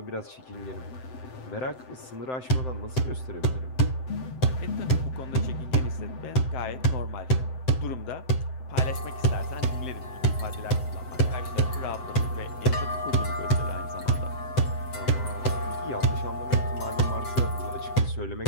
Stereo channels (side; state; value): right; late; 7.8 ms